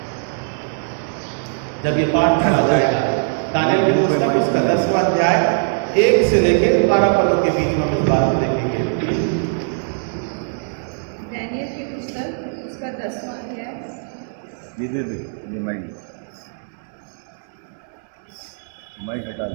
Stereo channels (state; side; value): silent; left; digital silence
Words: जब ये पाठ पढ़ा जाएगा, दानियल की पुस्तक उसका 10वां अध्याय 1 से लेकर 12 पदों के बीच में हम इस बात को देखेंगे। दानियल की पुस्तक उसका 10वां अध्याय। माइक हटा